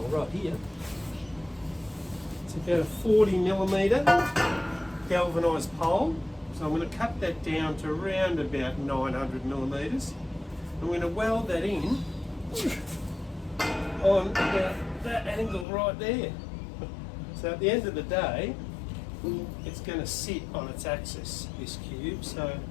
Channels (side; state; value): right; drops out; at 15.7 s